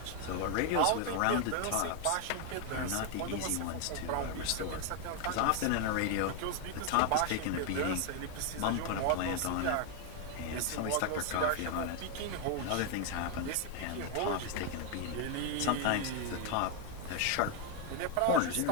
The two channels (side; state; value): both; different; correlation 0.01